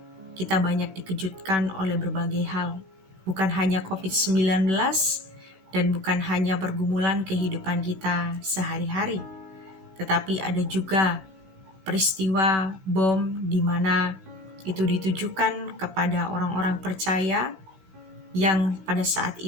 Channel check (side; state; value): left; late; 16 ms